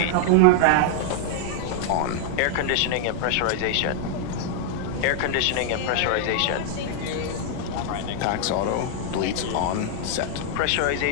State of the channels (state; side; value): different; both; correlation 0.00